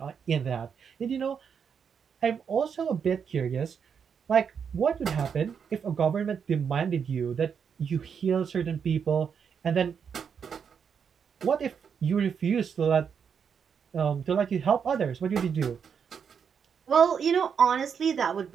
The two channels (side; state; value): left; quieter; 6.9 dB